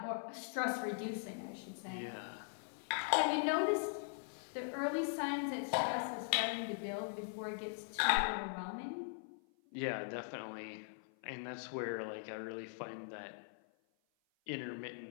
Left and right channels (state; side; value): silent; right; 51 dB below the other